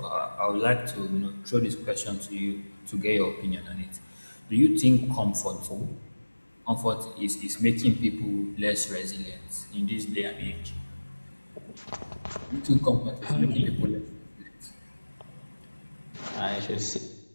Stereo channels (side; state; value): both; inverted; correlation -1.00